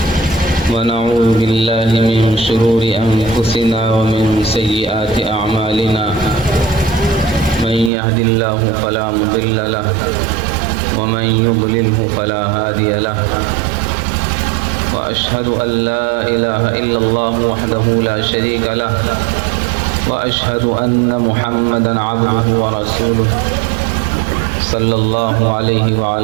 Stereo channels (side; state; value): left; drops out; at 7.9 s